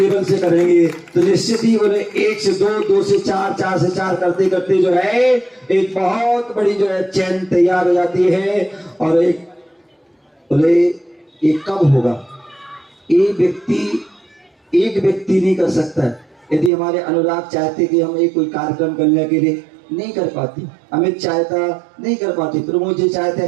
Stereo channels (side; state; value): left; drops out; at 16.7 s